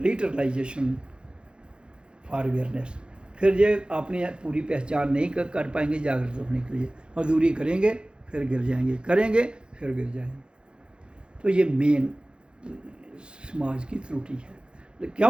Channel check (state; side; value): late; left; 0.052 ms